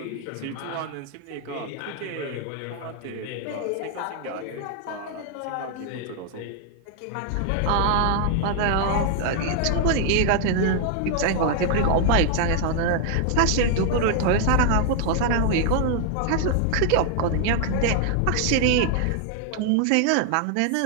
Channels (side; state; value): both; different; correlation 0.00